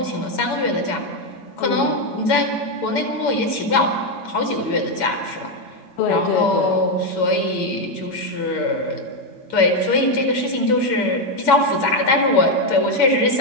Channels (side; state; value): right; late; 7.7 ms